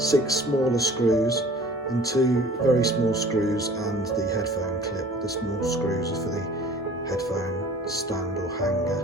smaller screws and 2 very small screws, and the headphone clip. The small screws are for the headphone stand or hanger.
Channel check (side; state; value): both; normal; correlation 0.47